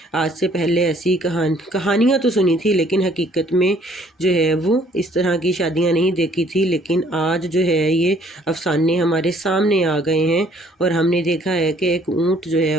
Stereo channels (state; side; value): normal; both; correlation 0.61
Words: آج سے پہلے ایسی کہانیاں تو سنی تھی، لیکن حقیقت میں جو ہے وہ اس طرح کی شادیاں نہیں دیکھی تھی، لیکن آج جو ہے یہ افسانے ہمارے سامنے آ گئے ہیں، اور ہم نے دیکھا ہے کہ ایک اونٹ جو ہے